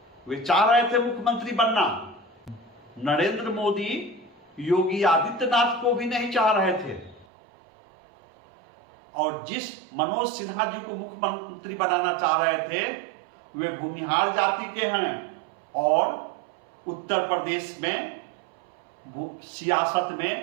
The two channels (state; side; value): drops out; left; at 7.2 s